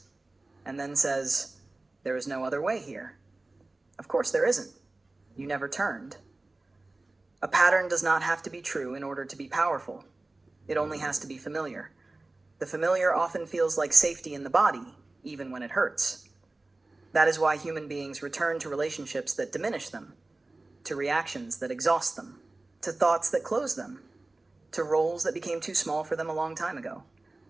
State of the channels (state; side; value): quieter; left; 3.1 dB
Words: and then says, there is no other way here. Of course there isn't. You never turned. A pattern does not have to be true in order to be powerful. It only has to be familiar. The familiar often feels like safety in the body, even when it hurts. That is why human beings return to relationships that diminish them, to reactions that exhaust them, to thoughts that close them, to roles that became too small for them a long time ago.